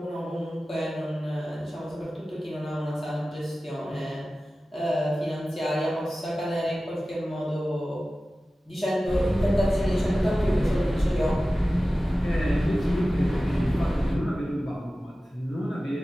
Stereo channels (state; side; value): normal; both; correlation 0.96